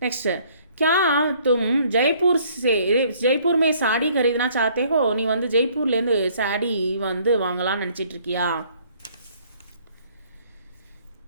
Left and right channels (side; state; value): both; inverted; correlation -0.61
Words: நெக்ஸ்ட் क्या तुम जयपुर में साड़ी खरीदना चाहते हो, நீ வந்து ஜெய்ப்பூர்லேருந்து சாடி வந்து வாங்கலாம்னு நினச்சிட்டு இருக்கியா.